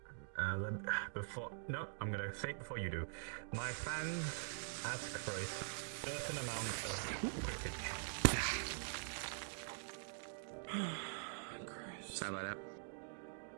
No, I'm gonna say it before you do. My fans ask for a certain amount of quippage. Sorry about that.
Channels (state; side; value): silent; left; digital silence